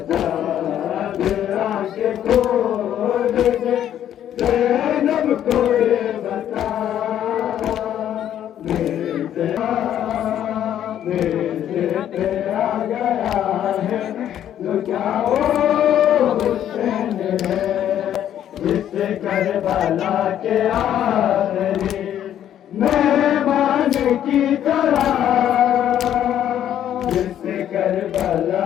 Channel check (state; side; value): quieter; right; 10.7 dB